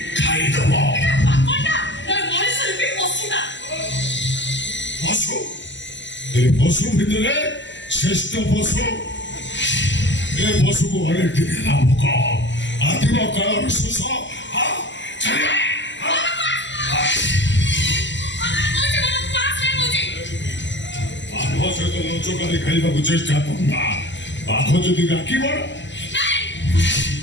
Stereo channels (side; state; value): right; late; 0.54 ms